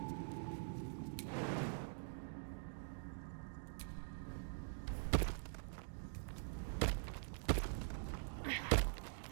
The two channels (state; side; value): silent; left; digital silence